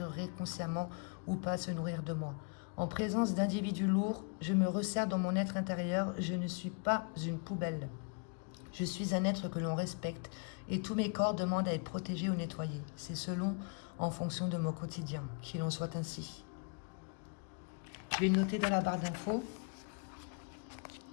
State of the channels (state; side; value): quieter; right; 36.9 dB